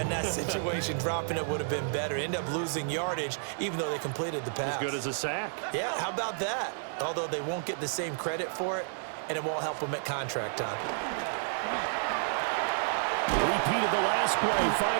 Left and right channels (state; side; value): silent; left; digital silence